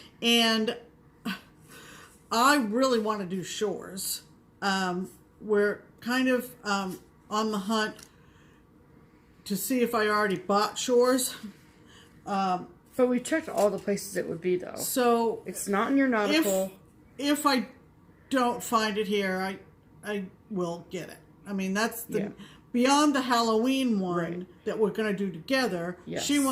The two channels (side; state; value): both; identical; correlation 1.00